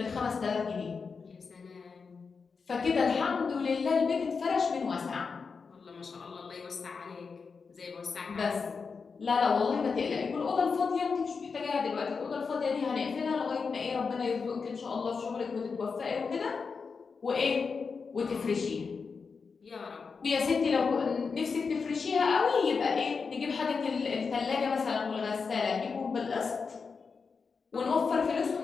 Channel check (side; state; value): right; quieter; 5.2 dB